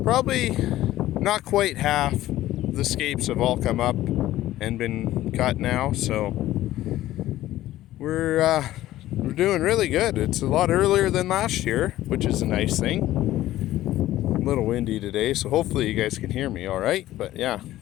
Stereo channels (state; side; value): quieter; right; 14.8 dB